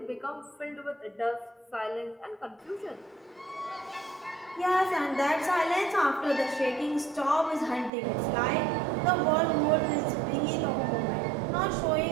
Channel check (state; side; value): drops out; left; at 7.9 s